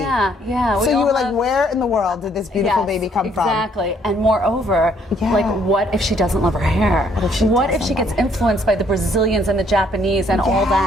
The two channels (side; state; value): both; normal; correlation 0.66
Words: So you were like, where in the world did this beautiful baby come from? Exactly. And moreover, like, what if she doesn't love her hair? What if she gets influenced by the Brazilians and the Japanese and all